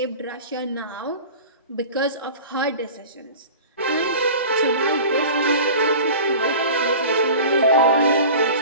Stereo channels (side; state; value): both; inverted; correlation -0.37